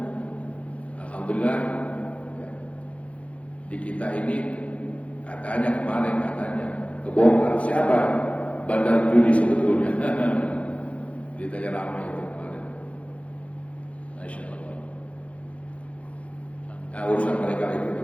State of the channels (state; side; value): late; right; 0.063 ms